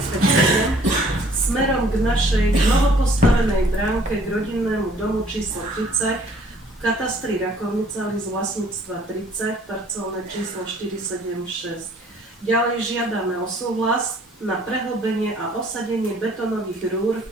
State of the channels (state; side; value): normal; both; correlation 0.57